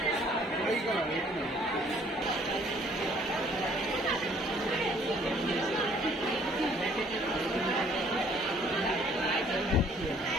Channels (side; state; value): both; normal; correlation 0.59